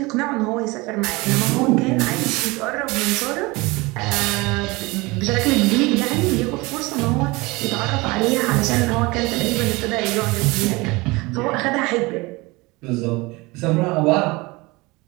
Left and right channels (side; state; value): left; quieter; 23.5 dB